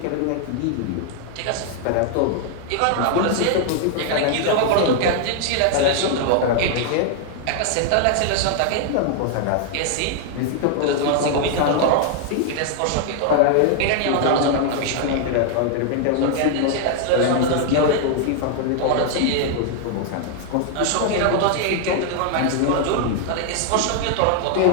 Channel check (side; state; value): both; different; correlation 0.00